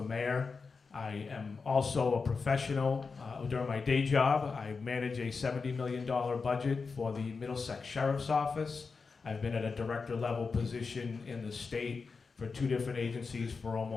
mayor. I am also a professional. During my day job, I manage a $70 million budget for the Middlesex Sheriff's Office. I've been at a director level position in the state for 2 different agencies for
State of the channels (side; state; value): right; quieter; 4.8 dB